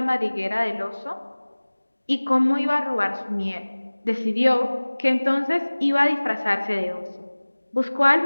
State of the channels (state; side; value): inverted; both; correlation -1.00